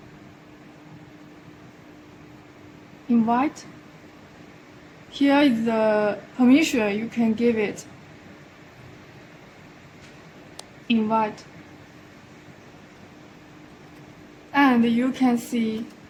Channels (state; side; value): identical; both; correlation 1.00